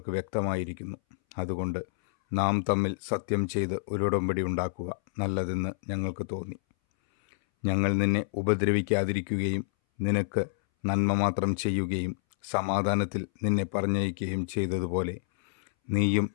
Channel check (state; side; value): silent; right; 59 dB below the other